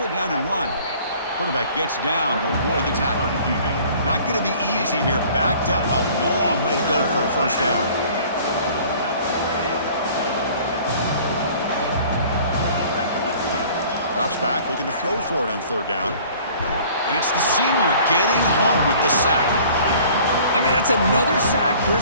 it down and run. Quarterback gets down to avoid the tackle. Not going to be easy here. Backed up a long way to go for a first down. Drops back, looking to throw for it on third down. And it's the senior getting home with the sack. I mean, that's another sack,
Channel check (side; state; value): both; inverted; correlation -0.51